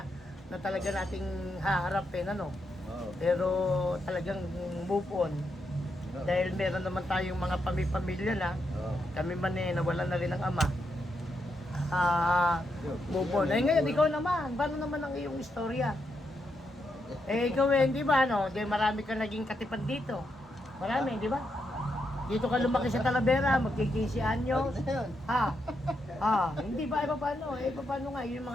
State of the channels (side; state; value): both; normal; correlation 0.82